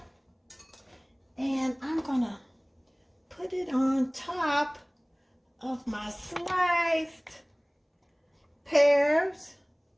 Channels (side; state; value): both; identical; correlation 1.00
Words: And I'm gonna put it on top of my sliced pears